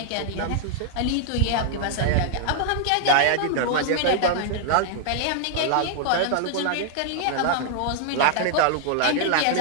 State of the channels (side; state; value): both; different; correlation 0.00